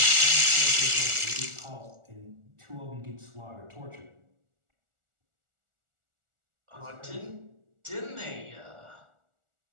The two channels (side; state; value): left; late; 1.4 ms